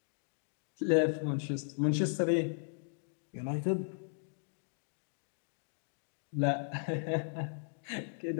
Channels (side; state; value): right; silent; digital silence